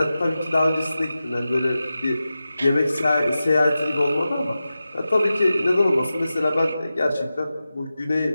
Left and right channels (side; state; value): both; inverted; correlation -0.93